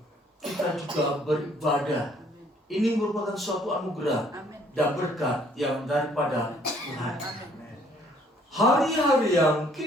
kita juga beribadah, ini merupakan suatu anugerah dan berkat yang daripada Tuhan. Hari-hari yang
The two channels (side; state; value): both; normal; correlation 0.62